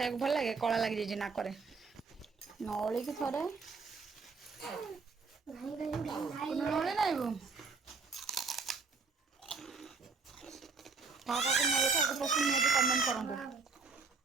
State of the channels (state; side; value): quieter; left; 4.6 dB